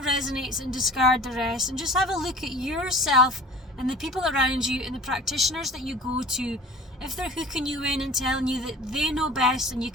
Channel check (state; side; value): normal; both; correlation 0.42